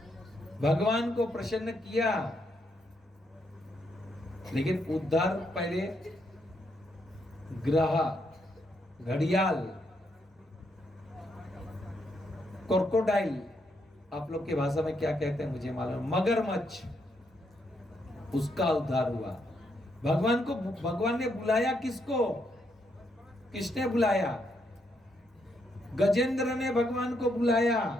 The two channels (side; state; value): both; normal; correlation 0.77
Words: भगवान को प्रसन्न किया, लेकिन उद्धार पहले ग्रह, घड़ियाल, क्रोकोडाइल, आप लोग की भाषा में क्या कहते हैं मुझे मालूम, मगरमच्छ, उसका उद्धार हुआ। भगवान ने बुलाया किसको? किसने बुलाया? गजेंद्र ने भगवान को बुलाया।